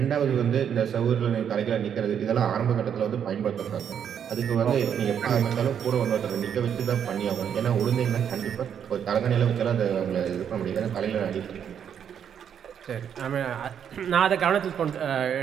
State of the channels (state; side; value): quieter; left; 8.4 dB